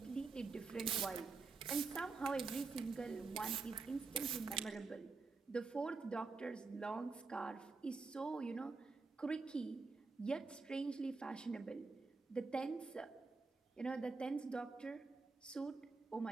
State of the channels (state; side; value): quieter; left; 4.2 dB